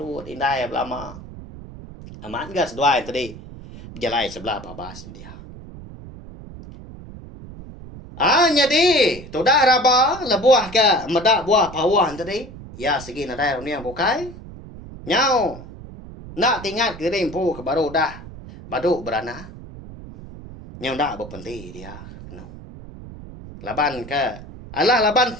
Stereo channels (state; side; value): noise; right; rumble, 15 dB below the sound